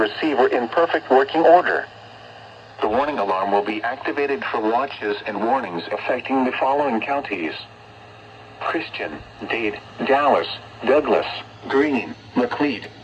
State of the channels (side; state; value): both; identical; correlation 1.00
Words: in perfect working order. The warning alarm will be activated for watches and warnings affecting the following counties: Christian, Dade, Dallas, Douglas, Greene, Macleod,